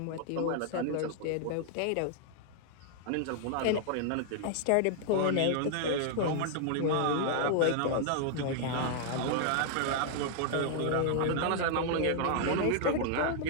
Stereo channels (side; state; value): both; different; correlation 0.00